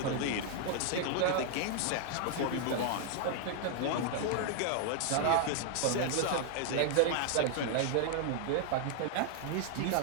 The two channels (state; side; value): different; both; correlation 0.00